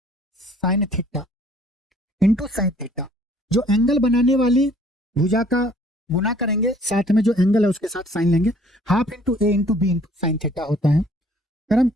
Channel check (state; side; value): normal; both; correlation 0.58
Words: sine theta जो एंगल बनाने वाली भुजा का गुना करेंगे, साथ में जो एंगल है उसके साथ साइन लेंगे, half into A into B into sine theta होता है। अगर हम